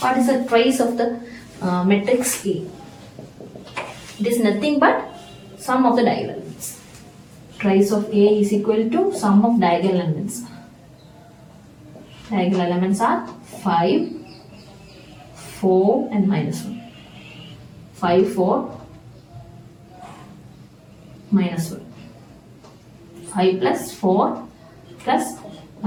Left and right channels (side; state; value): both; identical; correlation 1.00